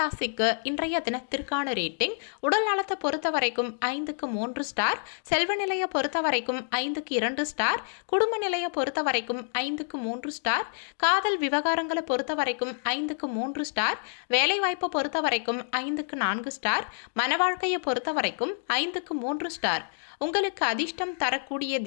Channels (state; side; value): silent; right; digital silence